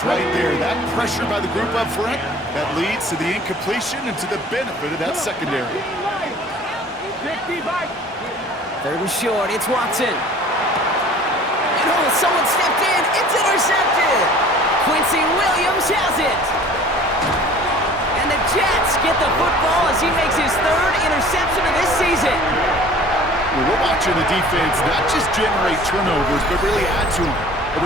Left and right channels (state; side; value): normal; both; correlation 0.47